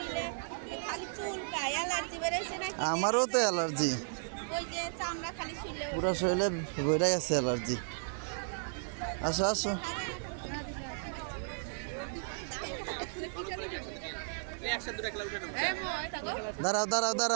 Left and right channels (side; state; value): left; silent; digital silence